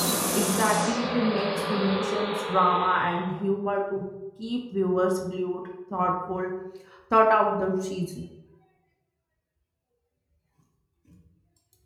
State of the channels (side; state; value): both; identical; correlation 1.00